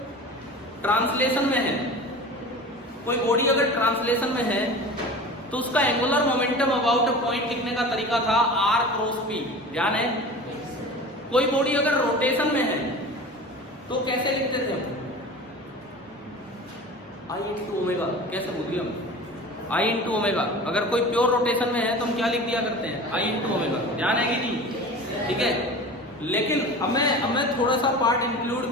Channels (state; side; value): normal; both; correlation 0.36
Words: ट्रांसलेशन में है, कोई बॉडी अगर ट्रांसलेशन में है तो उसका angular momentum about a point लिखने का तरीका था r क्रॉस p, ध्यान है। कोई बॉडी अगर रोटेशन में है तो कैसे लिखते थे हम, i इंटू ओमेगा, कैसे बोलिए हम, i इंटू ओमेगा। अगर कोई प्योर रोटेशन में है तो हम क्या लिख दिया करते हैं, i इंटू ओमेगा, ध्यान है कि नहीं। ठीक है, लेकिन अब मैं थोड़ा सा पार्ट इंक्लूड